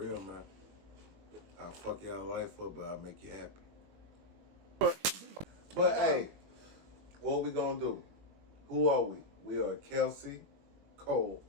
man. I'll fuck y'all life up, but I'll make you happy. But hey, what we gonna do? Who are we? We are Kelsey Cole.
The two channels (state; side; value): late; left; 21 ms